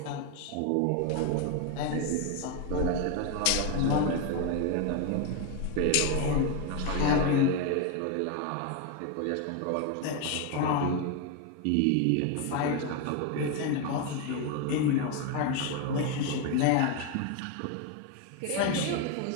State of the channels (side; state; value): both; different; correlation 0.02